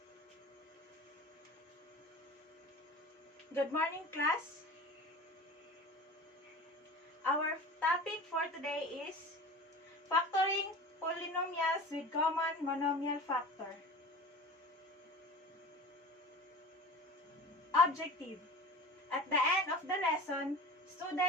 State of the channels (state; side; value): normal; both; correlation 0.37